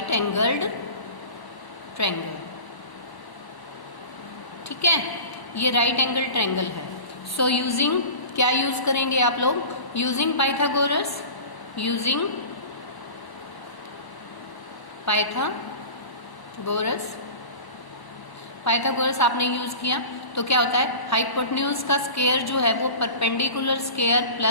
angled triangle, ठीक है, ये राइट एंगल ट्रायंगल है। सो यूजिंग, क्या यूज करेंगे आप लोग, यूजिंग पाइथागोरस, पाइथागोरस आपने यूज किया तो क्या होता है, हाइपोटेन्यूज का स्क्वायर जो है वो perpendicular square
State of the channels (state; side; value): late; right; 1.0 ms